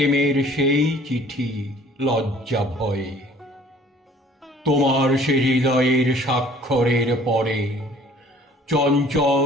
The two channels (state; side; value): normal; both; correlation 0.53